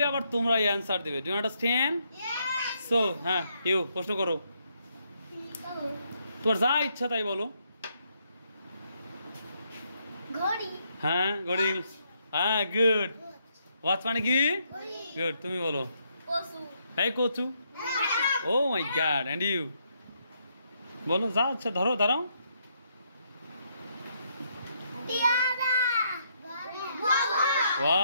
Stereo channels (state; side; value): inverted; both; correlation -0.75